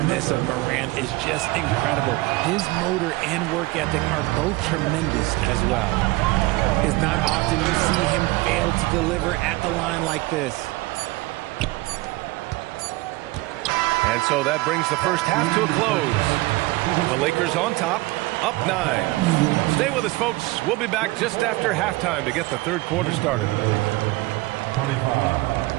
of Morant is just incredible. His motor and work ethic are both tremendous as well. It's not often you see him fail to deliver at the line like this. And so that brings the first half to a close. The Lakers on top, up 9. Stay with us, folks. We'll be back just after halftime to get the third quarter started. 25.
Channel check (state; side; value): quieter; left; 21.2 dB